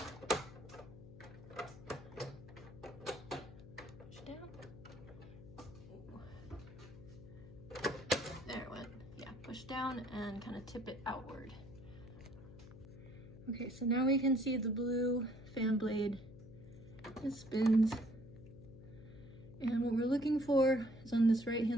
Push down. Ooh. There it went. Yeah, push down and kind of tip it outward. Okay, so now we can see the blue fan blade. It spins. And what we're looking for is on this right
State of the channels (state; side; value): noise; left; hum, 16 dB below the sound